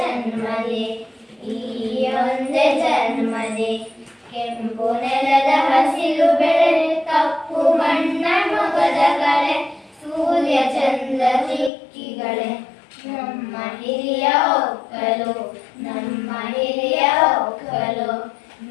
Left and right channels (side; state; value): right; drops out; at 11.7 s